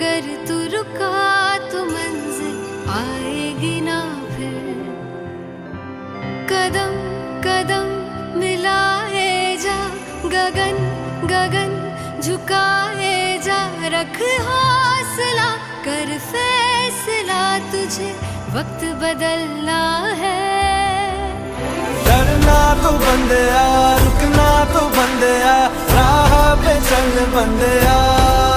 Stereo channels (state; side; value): identical; both; correlation 1.00